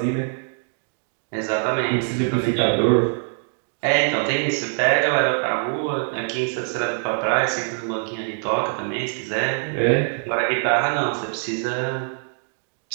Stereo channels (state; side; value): silent; left; digital silence